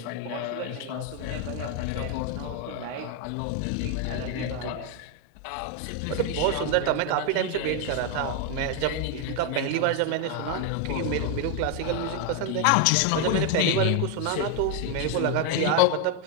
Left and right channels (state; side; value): different; both; correlation 0.01